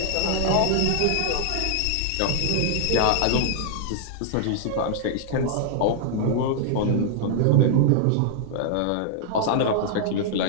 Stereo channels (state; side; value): different; both; correlation -0.01